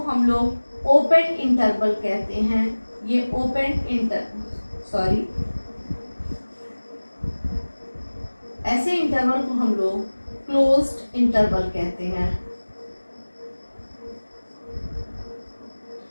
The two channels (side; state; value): both; inverted; correlation -1.00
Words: हम लोग ओपन इंटरवल कहते हैं। ये ऐसे इंटरवल को हम लोग क्लोज्ड इंटरवल कहते हैं।